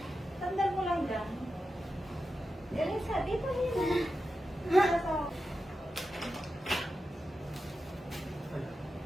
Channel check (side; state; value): both; normal; correlation 0.90